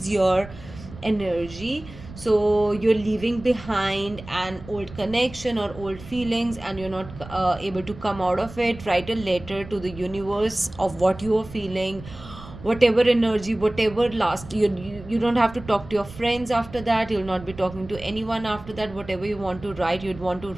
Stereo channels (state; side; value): noise; right; rumble, 16 dB below the sound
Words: your energy. So you're leaving behind an old connection or old feelings, and you're not able to come out of it. Write a letter to the universe of what you are feeling, whatever energy, whatever last you don't have to talk to your friends after that. You'll not be talking to anyone after that. Whatever you want to write, you'd want to